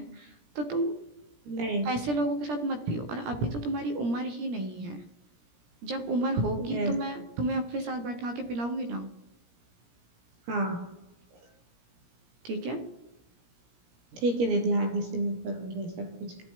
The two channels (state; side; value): late; left; 17 ms